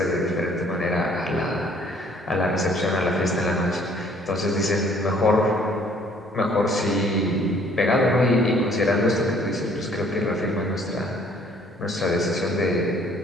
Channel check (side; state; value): both; normal; correlation 0.59